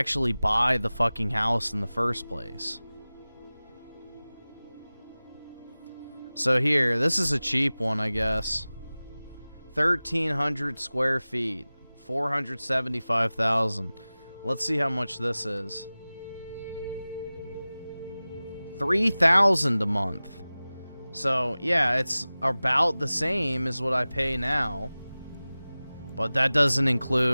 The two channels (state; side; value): inverted; both; correlation -0.98